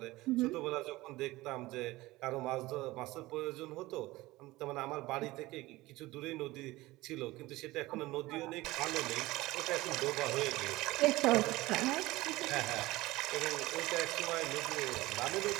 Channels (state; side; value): quieter; left; 19.2 dB